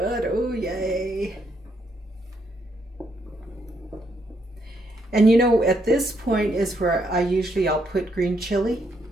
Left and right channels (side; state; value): both; normal; correlation 0.75